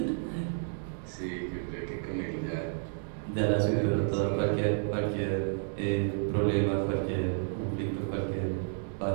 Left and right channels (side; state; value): left; silent; digital silence